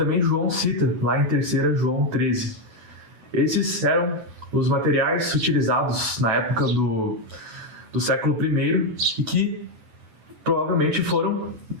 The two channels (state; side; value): late; left; 9.6 ms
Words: João cita lá em 3 João 13. Esses eram os materiais utilizados na época do século I e que provavelmente foram